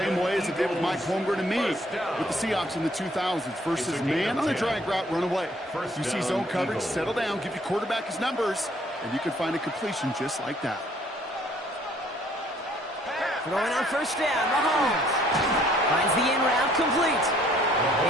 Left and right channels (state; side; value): normal; both; correlation 0.62